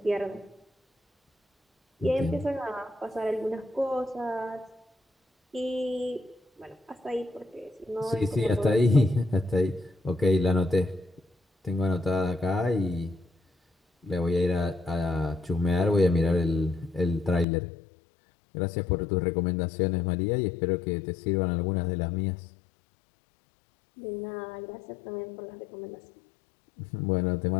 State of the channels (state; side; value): drops out; right; at 17.4 s